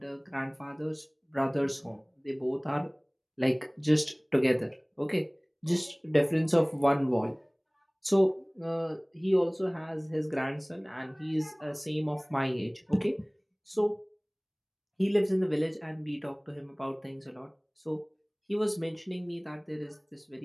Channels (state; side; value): identical; both; correlation 1.00